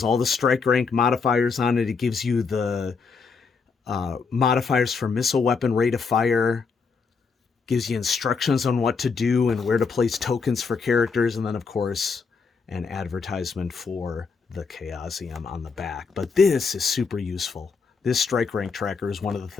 all the strike rank modifiers on it. It gives you the modifiers for missile weapon, rate of fire, gives you instructions on what to do and where to place tokens for characters, and then of course an advertisement for the Chaosium on the back. But this is super useful. This strike rank tracker is one of the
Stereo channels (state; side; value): quieter; right; 5.1 dB